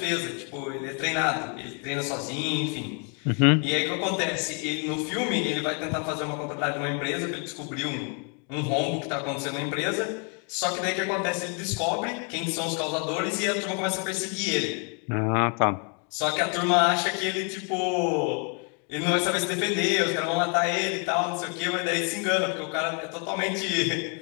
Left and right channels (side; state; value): right; quieter; 38.3 dB